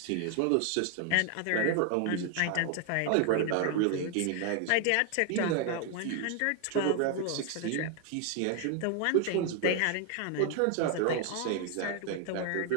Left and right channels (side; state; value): both; different; correlation 0.00